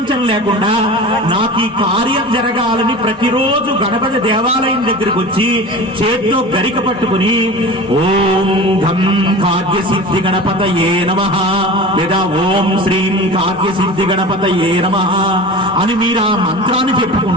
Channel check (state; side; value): normal; both; correlation 0.34